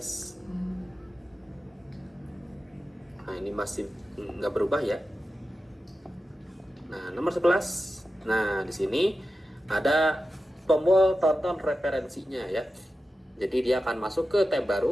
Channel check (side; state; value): both; normal; correlation 0.92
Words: Nah, ini masih nggak berubah ya. Nah, nomor 11. Nah, di sini ada tombol tonton referensinya ya. Jadi dia akan masuk ke tab